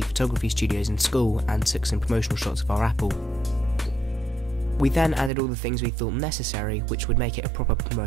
photography studios in school and took some promotional shots of our Apple. We then added all the things we thought necessary, which would make it a proper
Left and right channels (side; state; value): left; drops out; at 5.3 s